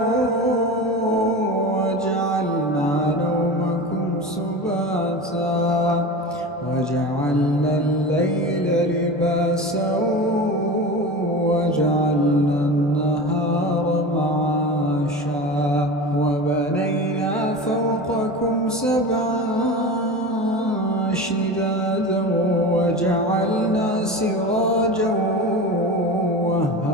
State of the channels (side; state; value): both; normal; correlation 0.29